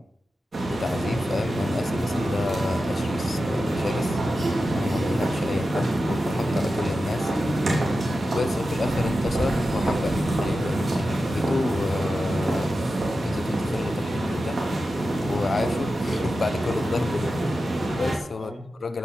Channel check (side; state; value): both; normal; correlation 0.92